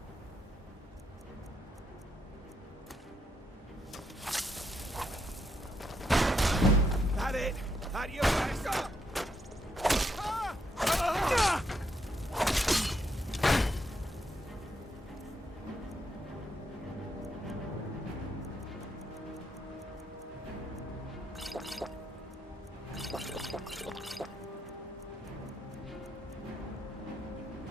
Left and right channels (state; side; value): normal; both; correlation 0.78